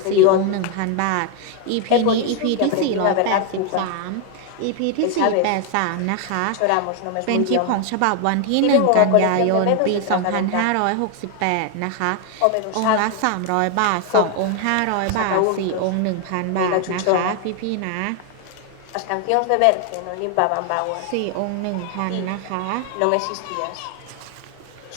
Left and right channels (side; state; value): both; different; correlation 0.00